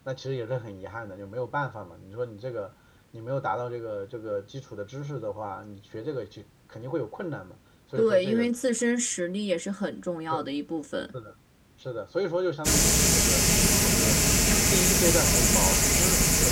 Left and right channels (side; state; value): both; identical; correlation 1.00